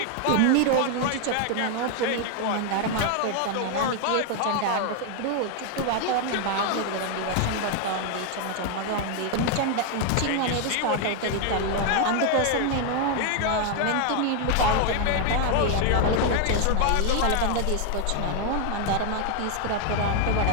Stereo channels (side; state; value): both; different; correlation 0.00